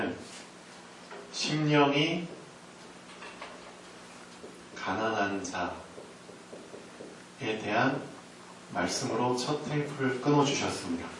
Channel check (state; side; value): identical; both; correlation 1.00